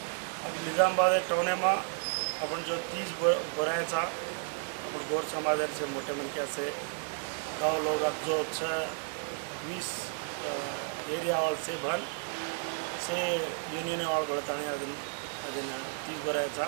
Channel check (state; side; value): silent; left; 56 dB below the other